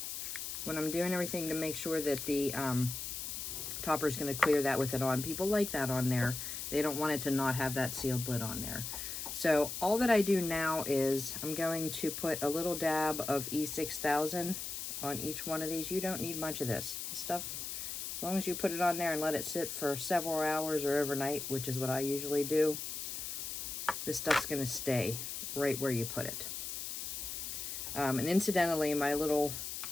when I'm doing everything to make sure that the topper is going to clear that with it on. People like that on there. They don't want it to not have that sealed lid on there. So all that I do now is I'm going to put a little dab of E6000 on each one of these. You don't need much of this stuff. As long as you put it on there and let it sit for several hours or overnight, which is what I usually do, this stuff's going to stay right where you put it. And incidentally, my little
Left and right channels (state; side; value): noise; left; hiss, 5 dB below the sound